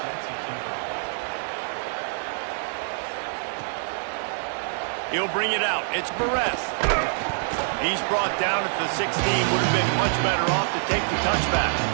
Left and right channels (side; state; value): left; silent; digital silence